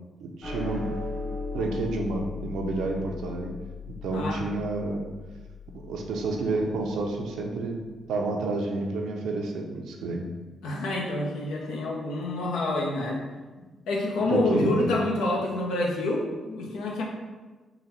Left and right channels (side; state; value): both; normal; correlation 0.70